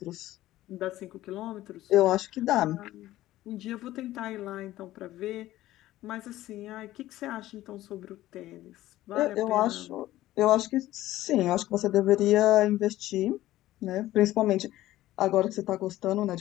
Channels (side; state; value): right; quieter; 15.3 dB